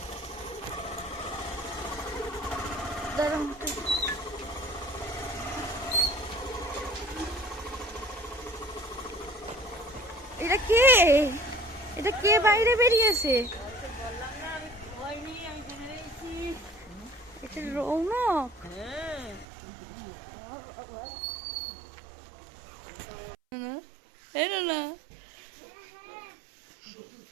দাঁড়ান, এটা কে? এটা কে বাইরে বেরিয়েছে? এটা রৌনক। না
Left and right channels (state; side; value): drops out; left; at 19.5 s